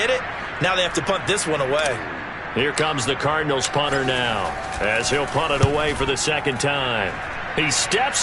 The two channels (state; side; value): identical; both; correlation 1.00